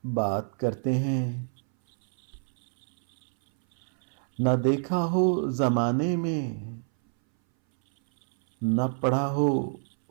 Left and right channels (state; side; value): silent; left; 60 dB below the other